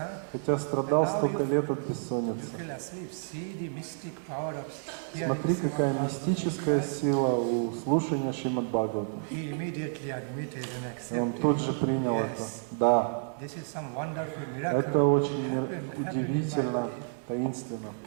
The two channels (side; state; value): left; silent; digital silence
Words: хотя страдал столько лет от You бессонницы. fell asleep. See the mystic power of hearing Смотри, какая Bhagavatam мистическая class. сила у слушания Шримад Бхагавата. He immediately admitted and И он accepted. тут же принял это. Yes, Да, this is some wonderful miracle. это очень Happened in my удивительно, life. таинственно.